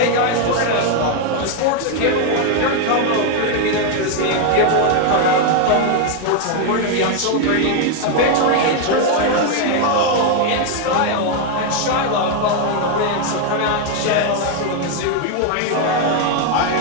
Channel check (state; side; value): different; both; correlation 0.01